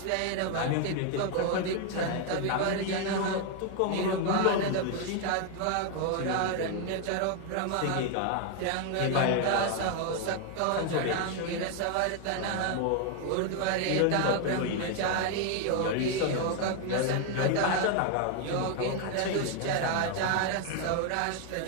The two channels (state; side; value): different; both; correlation 0.00